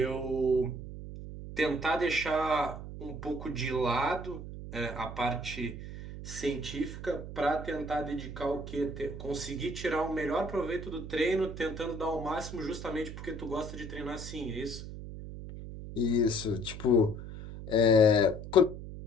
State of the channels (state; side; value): noise; right; hum, 10 dB below the sound